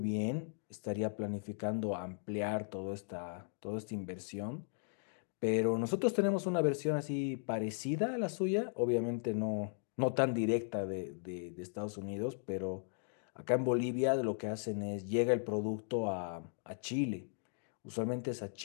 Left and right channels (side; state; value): right; silent; digital silence